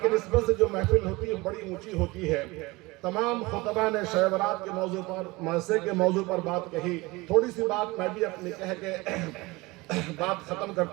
کی نسبت سے جو محفل ہوتی ہے بڑی اونچی ہوتی ہے۔ تمام خطبہ نے شب برات کے موضوع پر، معاشرے کے موضوع پر بات کہی۔ تھوڑی سی بات میں بھی اپنی کہہ کے بات ختم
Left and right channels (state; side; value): quieter; left; 22.6 dB